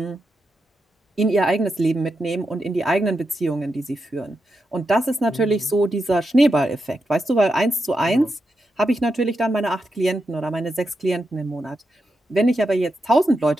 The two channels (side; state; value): both; normal; correlation 0.86